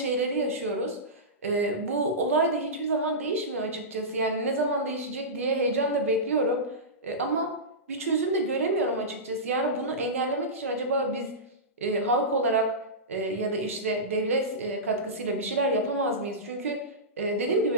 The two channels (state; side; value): normal; both; correlation -0.17